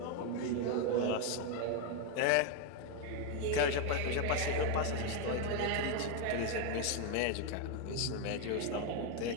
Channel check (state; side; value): different; both; correlation 0.01